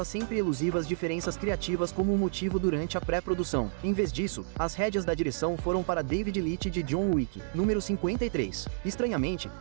as sempre elusivas diferenças criativas como um motivo durante a pré-produção. Em vez disso, as rédeas da direção foram para David Leitch de John Wick. Número 53. Estranhamente,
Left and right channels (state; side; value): silent; left; digital silence